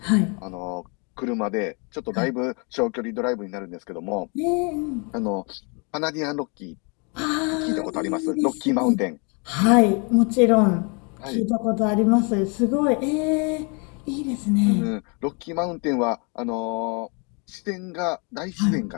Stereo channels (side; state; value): right; quieter; 33.7 dB